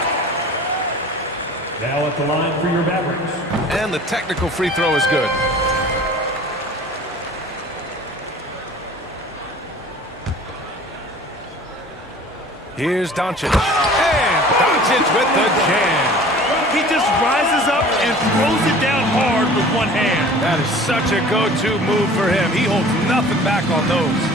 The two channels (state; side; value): normal; both; correlation 0.45